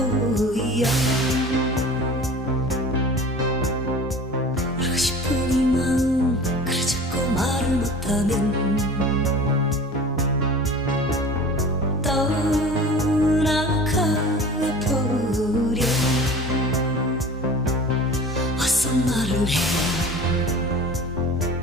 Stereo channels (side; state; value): both; normal; correlation 0.39